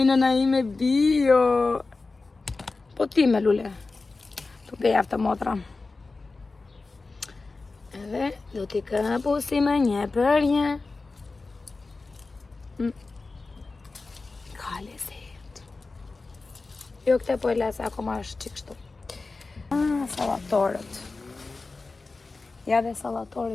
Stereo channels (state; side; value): quieter; right; 3.7 dB